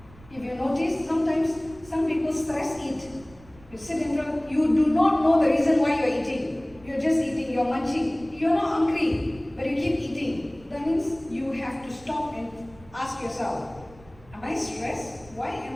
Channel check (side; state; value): right; noise; rumble, 23 dB below the sound